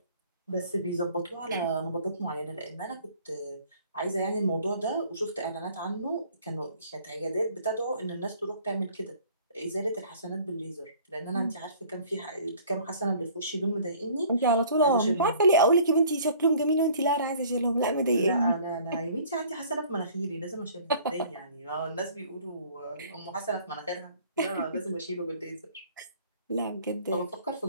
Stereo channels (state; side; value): inverted; both; correlation -0.52